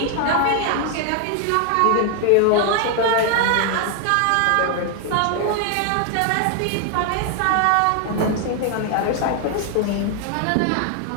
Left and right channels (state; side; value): different; both; correlation 0.00